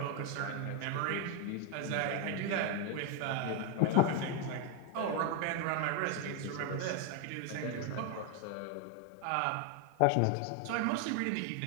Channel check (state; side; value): different; both; correlation 0.01